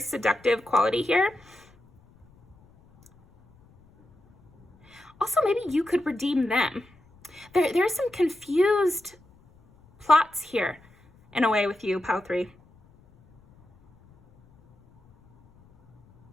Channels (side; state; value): left; noise; rumble, 29 dB below the sound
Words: quality here. Also, maybe you could redeem them. There's some confused plots here, in a way, with you, pile 3.